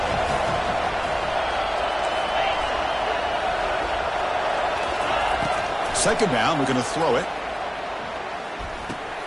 Second down, we're going to throw it.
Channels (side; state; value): both; identical; correlation 1.00